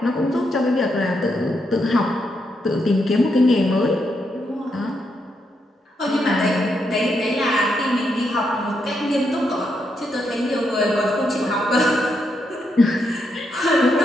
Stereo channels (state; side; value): normal; both; correlation 0.80